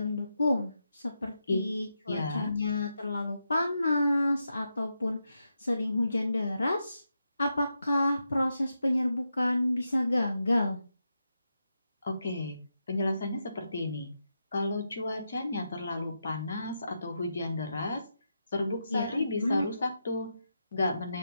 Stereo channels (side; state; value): both; inverted; correlation -0.86